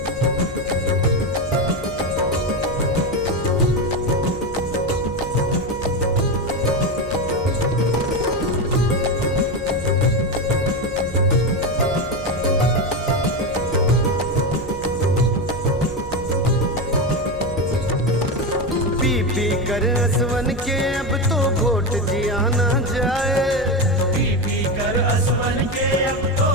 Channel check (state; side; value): noise; right; hum, 15 dB below the sound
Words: पी कर असवन के अब तो घोट जिया ना जाए, पी कर असवन के अब तो